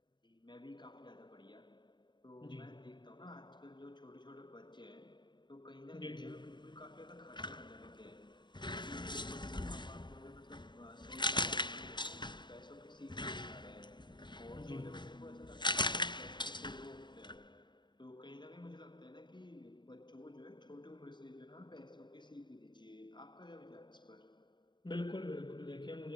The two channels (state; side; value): late; right; 0.22 ms